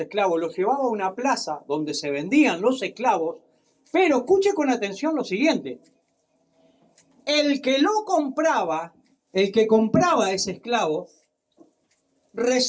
los llevaba a una plaza donde se vendían los esclavos, pero escuche con atención lo siguiente. El que lo compraba, el que compraba ese esclavo,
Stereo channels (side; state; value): both; identical; correlation 1.00